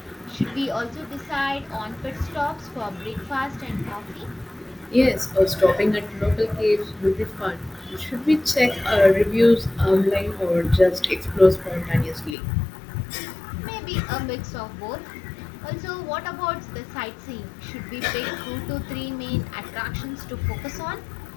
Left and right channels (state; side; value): drops out; right; at 12.4 s